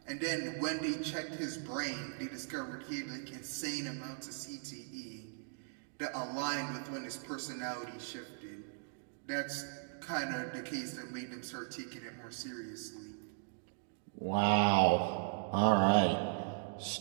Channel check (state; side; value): silent; left; digital silence